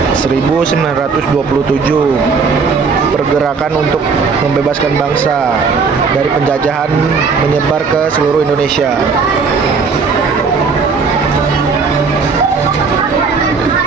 1927, pergerakan untuk membebaskan bangsa dari penjajahan menyebar ke seluruh Indonesia.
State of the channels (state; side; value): quieter; left; 5.0 dB